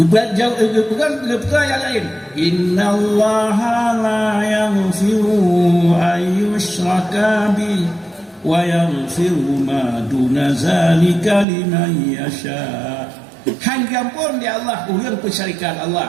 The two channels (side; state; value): left; drops out; at 11.5 s